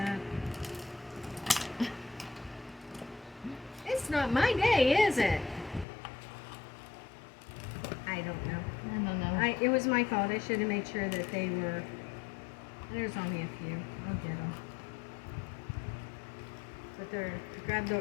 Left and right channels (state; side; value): drops out; right; at 5.9 s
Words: It's not my day, is it? I don't know. I don't know. It was my fault. I should have made sure that they were. There's only a few. I'll get them. But